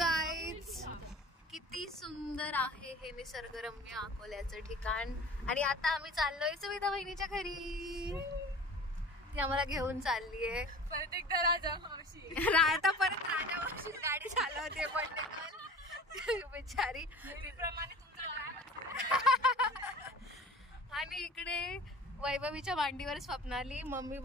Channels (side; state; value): both; normal; correlation 0.41